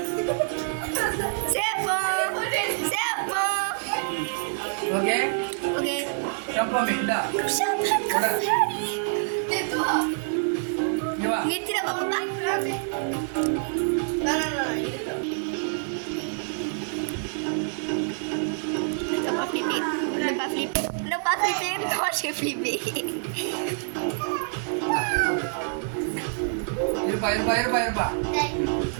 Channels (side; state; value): left; silent; 61 dB below the other